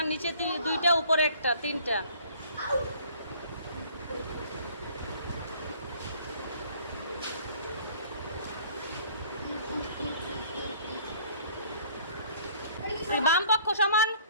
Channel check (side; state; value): both; inverted; correlation -0.54